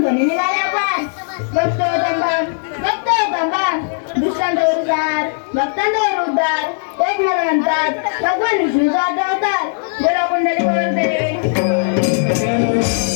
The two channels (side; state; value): right; silent; digital silence